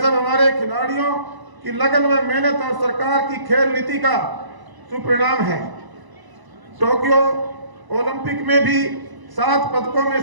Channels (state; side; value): late; left; 1.0 ms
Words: हमारे खिलाड़ियों की लगन व मेहनत और सरकार की खेल नीति का सुपरिणाम है। टोक्यो ओलंपिक में भी 7 पदकों में